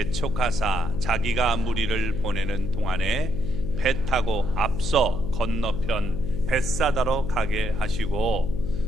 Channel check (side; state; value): left; noise; hum, 5 dB below the sound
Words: 자기가 무리를 보내는 동안에 배 타고 앞서 건너편 벳사다로 가게 하시고